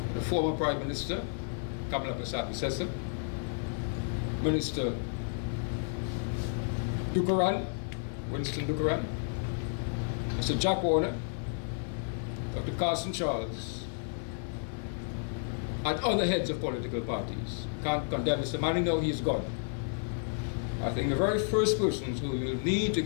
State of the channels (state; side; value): silent; right; digital silence